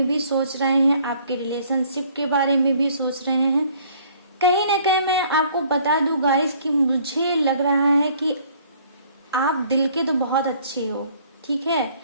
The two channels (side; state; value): both; inverted; correlation -0.58